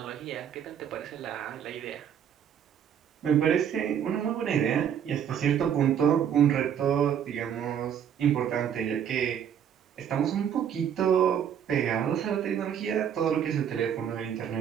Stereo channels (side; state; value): left; quieter; 8.7 dB